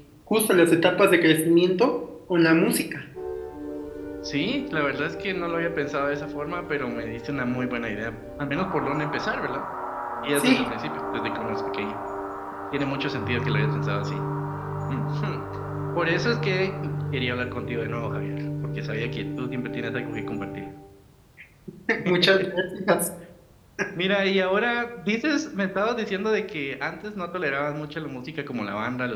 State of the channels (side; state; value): both; identical; correlation 1.00